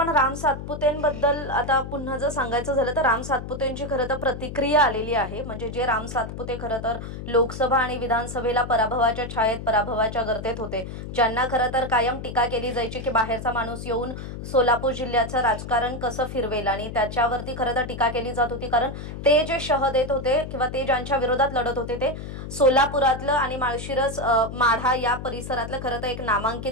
राम सातपुतेंबद्दल आता पुन्हा जर सांगायचं झालं तर राम सातपुतेंची खरं तर प्रतिक्रिया आलेली आहे. म्हणजे जे राम सातपुते खरं तर लोकसभा आणि विधानसभेला पराभवाच्या छायेत पराभवाच्या गर्तेत होते, ज्यांना खरं तर कायम टीका केली जायची की बाहेरचा माणूस येऊन सोलापूर जिल्ह्याचं राजकारण कसं फिरवेल, आणि त्याच्यावरती खरं तर टीका केली जात होती. कारण ते जे शह देत होते किंवा ते ज्यांच्या विरोधात लढत होते ते सोलापुरातलं आणि माळशिरस माढा या परिसरातलं खरं तर एक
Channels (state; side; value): noise; left; hum, 9 dB below the sound